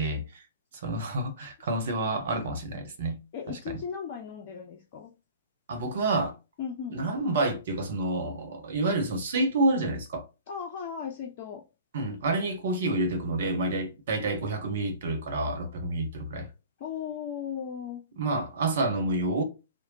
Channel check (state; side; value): inverted; both; correlation -0.44